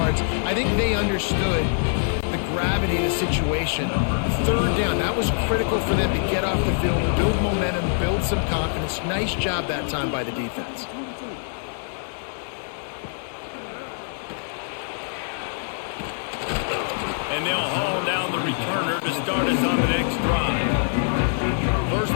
I think they understood the gravity of the situation. 3rd down, that was critical for them to get off the field, build momentum, build some confidence. Nice job that time by the defense. And they'll haul down the returner to start us on the next drive. First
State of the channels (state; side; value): silent; right; digital silence